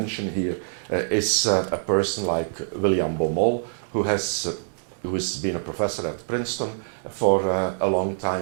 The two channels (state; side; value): silent; left; digital silence